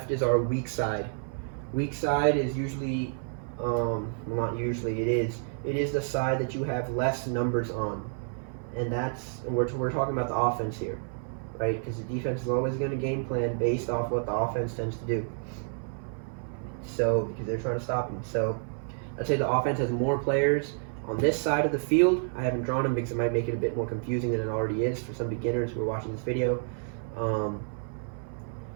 is our weak side. Weak side is usually, not usually, it is the side that you have less numbers on. And we're talking about the offense here, right? Because the defense is always going to game plan based off what the offense tends to do. So, because they're trying to stop him. So, let's say the offense has more players on this side of the field. I haven't drawn them because it might make it a bit more confusing than it already is for some beginners who are watching this video.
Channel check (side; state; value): left; silent; 58 dB below the other